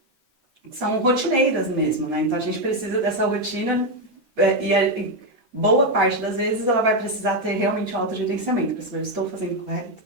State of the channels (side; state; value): left; late; 13 ms